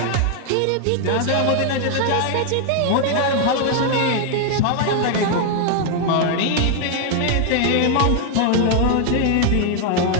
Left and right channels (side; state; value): both; different; correlation 0.00